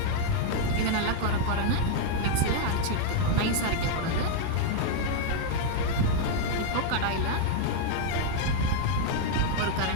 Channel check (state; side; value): different; both; correlation 0.00